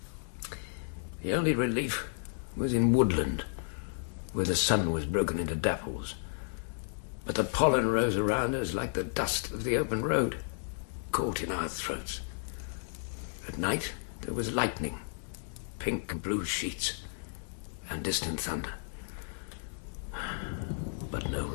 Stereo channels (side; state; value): right; silent; digital silence